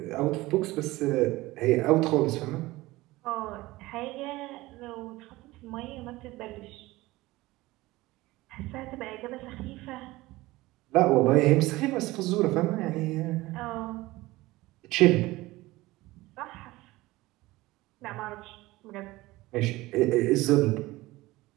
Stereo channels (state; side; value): quieter; left; 19.2 dB